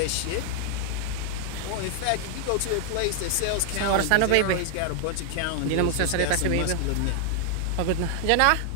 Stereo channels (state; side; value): different; both; correlation 0.00